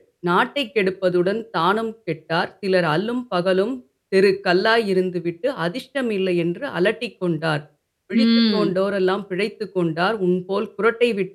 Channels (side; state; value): both; identical; correlation 1.00